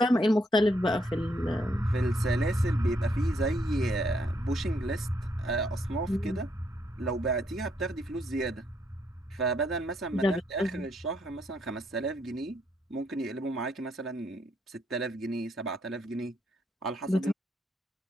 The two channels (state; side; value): normal; both; correlation 0.74